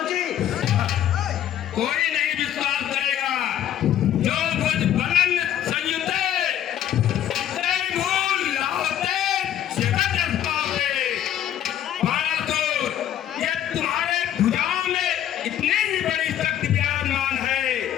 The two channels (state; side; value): quieter; right; 11.0 dB